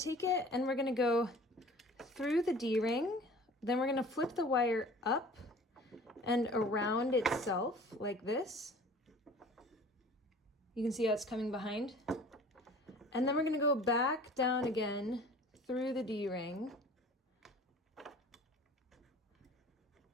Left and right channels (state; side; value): normal; both; correlation 0.46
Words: it and we're gonna go through the D-ring, then we're gonna flip the wire up and around itself like this. You can see how it's coming behind. And then we're gonna go back down again through the D-ring